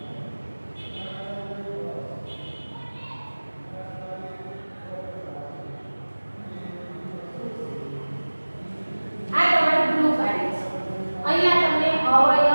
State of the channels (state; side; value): inverted; both; correlation -1.00